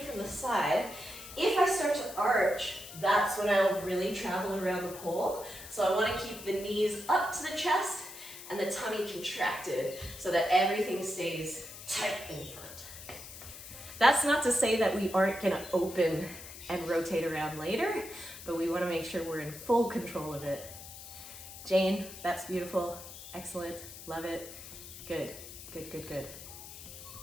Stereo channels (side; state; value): left; noise; hiss, 13 dB below the sound